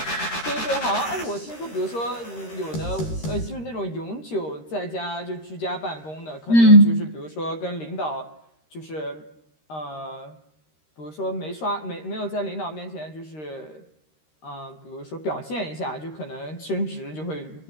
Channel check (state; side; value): late; right; 13 ms